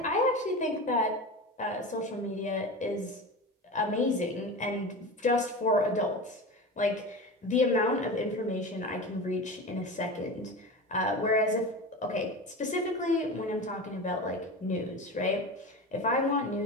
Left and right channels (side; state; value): both; normal; correlation 0.28